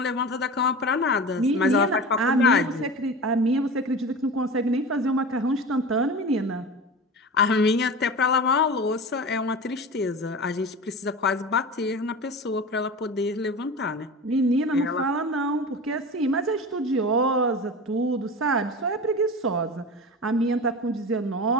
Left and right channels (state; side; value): normal; both; correlation 0.31